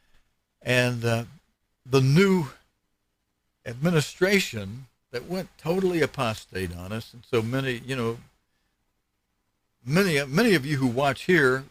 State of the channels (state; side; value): identical; both; correlation 1.00